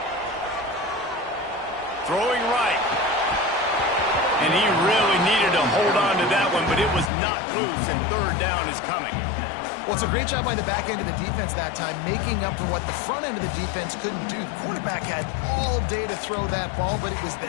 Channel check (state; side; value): drops out; right; at 7.1 s